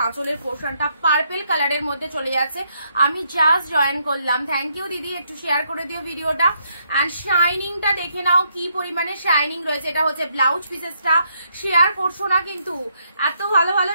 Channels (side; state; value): both; inverted; correlation -0.75